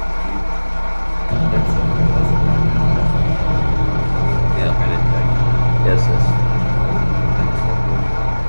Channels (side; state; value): both; inverted; correlation -1.00